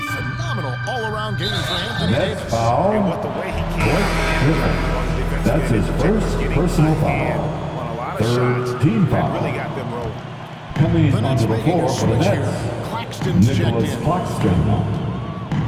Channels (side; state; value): both; identical; correlation 1.00